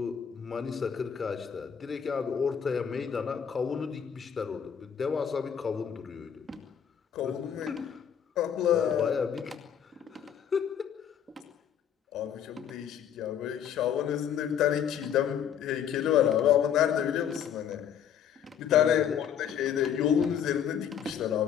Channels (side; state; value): right; quieter; 8.6 dB